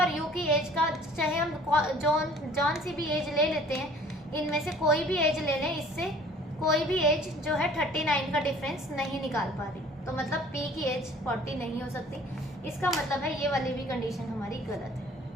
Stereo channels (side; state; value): both; normal; correlation 0.52